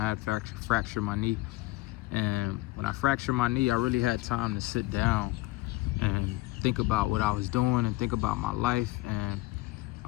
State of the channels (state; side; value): quieter; right; 19.7 dB